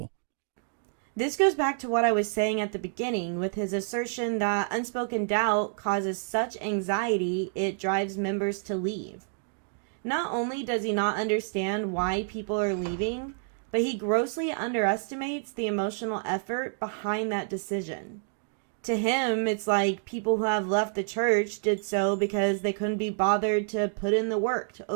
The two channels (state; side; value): silent; left; digital silence